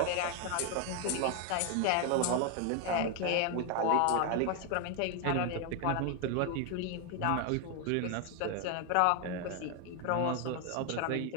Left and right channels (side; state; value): both; different; correlation 0.01